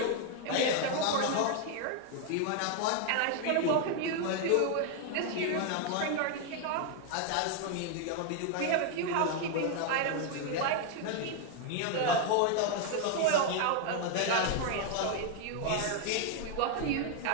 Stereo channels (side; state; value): both; different; correlation 0.00